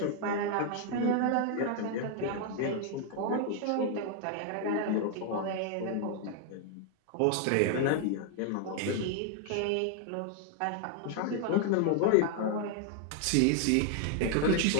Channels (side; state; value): both; different; correlation 0.00